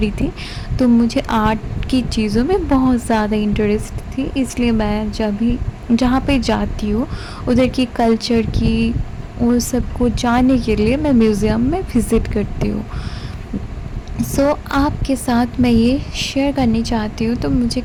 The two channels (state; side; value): identical; both; correlation 1.00